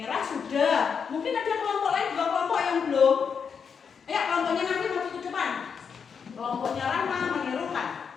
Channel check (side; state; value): right; quieter; 6.4 dB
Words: sudah. Mungkin ada kelompok lain juga kelompok yang belum. Ayo kelompoknya nanti maju ke depan. Kelompoknya Rama menirukan.